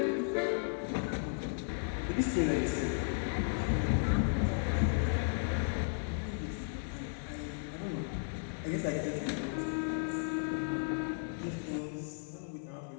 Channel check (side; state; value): right; silent; 55 dB below the other